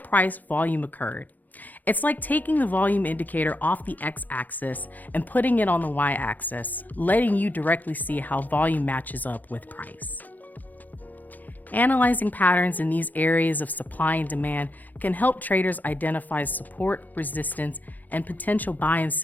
price volume occurred. It's like taking the volume indicator off the x-axis and putting it on the y-axis, letting you directly see how volume matches up with price. Analyzing patterns in these areas of supply and demand can help traders identify support, resistance, and potential buy and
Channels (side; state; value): right; late; 0.083 ms